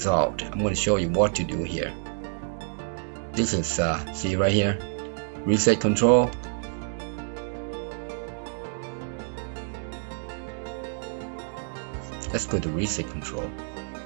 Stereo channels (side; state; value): left; silent; digital silence